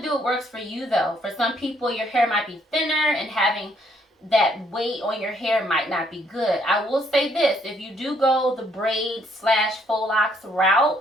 do what works for you though. For some people, your hair might be thinner and having that weight on your hair might not be good. I will say this, if you do go the braid / faux locks route,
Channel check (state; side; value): normal; both; correlation 0.68